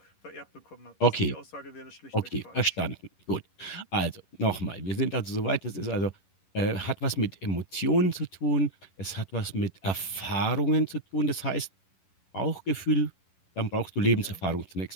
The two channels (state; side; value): late; right; 11 ms